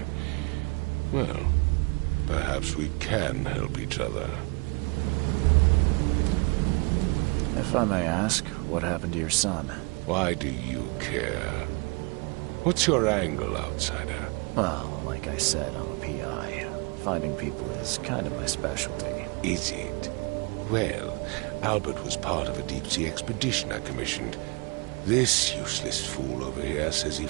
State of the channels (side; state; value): left; quieter; 30.1 dB